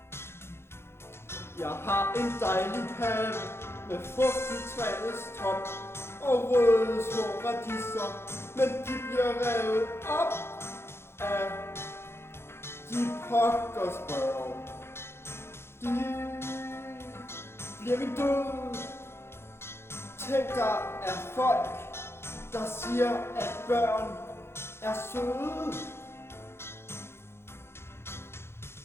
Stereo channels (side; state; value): right; late; 0.12 ms